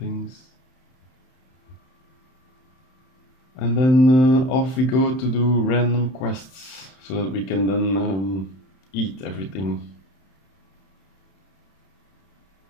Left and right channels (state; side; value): late; right; 31 ms